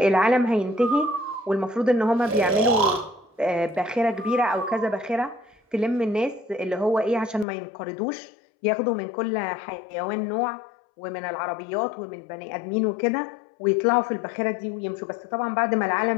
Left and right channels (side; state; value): right; drops out; at 7.5 s